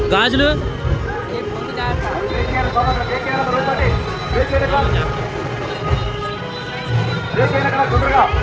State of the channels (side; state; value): both; identical; correlation 1.00